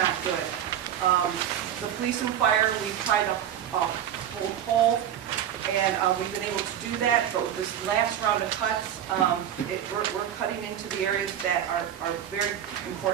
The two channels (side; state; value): left; quieter; 10.1 dB